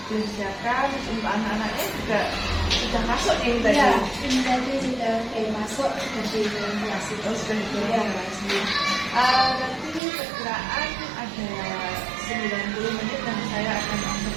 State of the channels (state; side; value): drops out; left; at 10.0 s